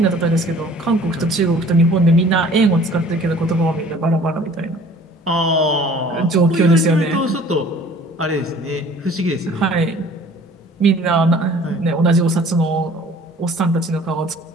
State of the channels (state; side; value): normal; both; correlation 0.51